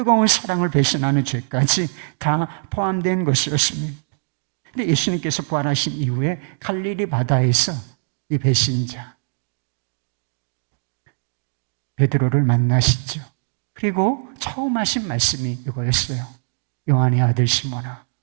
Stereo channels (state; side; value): silent; left; digital silence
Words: 사랑을 배신하는 죄까지 다 포함된 것이었습니다. 근데 예수님께서 부활하신 이후에 갈릴리 바다에서 이 배신자, 베드로를 만나시죠. 그리고 처음 하신 말씀이 이거였어요. 요한의 아들 시몬아,